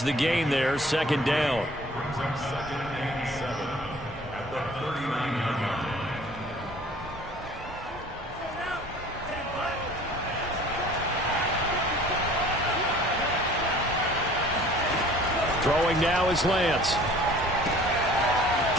the gain there, second down. Brings up second and 7 at the 39-yard line. Throwing now is Lance.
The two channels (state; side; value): normal; both; correlation 0.50